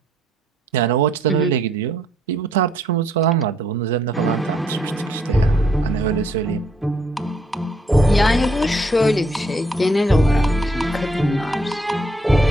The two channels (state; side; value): normal; both; correlation 0.69